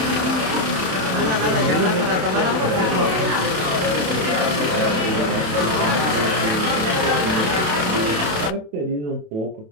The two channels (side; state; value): left; late; 27 ms